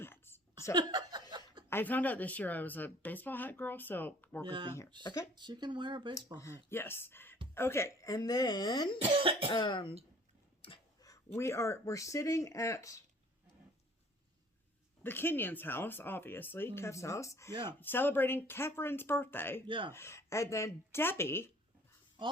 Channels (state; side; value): normal; both; correlation 0.54